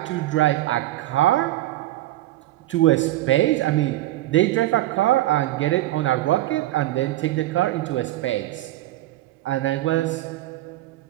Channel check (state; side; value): quieter; left; 15.6 dB